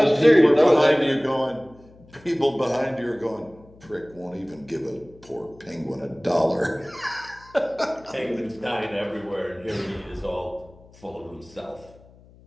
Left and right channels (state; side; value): noise; left; hum, 25 dB below the sound